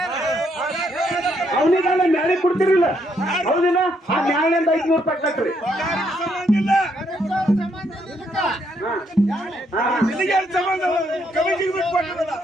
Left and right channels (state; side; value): normal; both; correlation 0.74